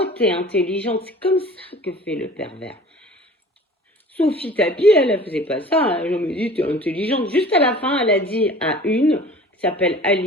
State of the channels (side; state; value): both; normal; correlation 0.44